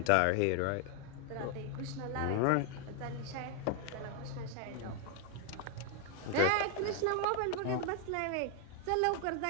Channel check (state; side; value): different; both; correlation 0.01